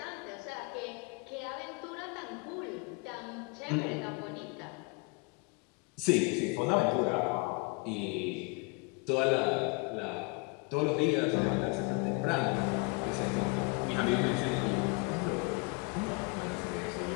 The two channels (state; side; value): quieter; right; 30.6 dB